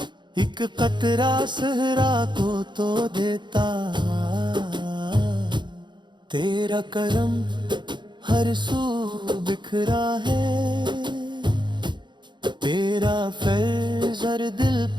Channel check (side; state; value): left; late; 0.22 ms